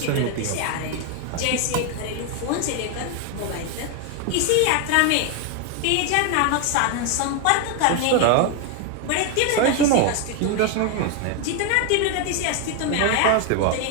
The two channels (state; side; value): different; both; correlation 0.01